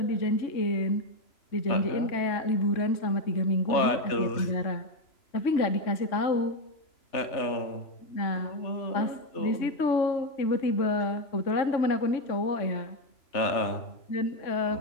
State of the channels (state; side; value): late; right; 3.0 ms